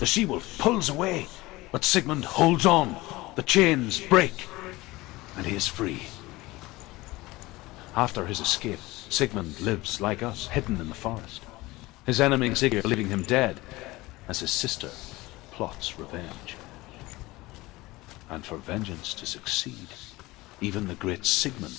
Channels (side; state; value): right; quieter; 20.2 dB